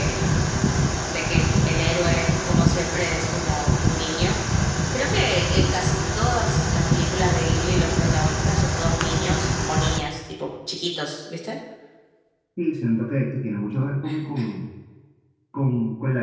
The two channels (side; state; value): both; identical; correlation 1.00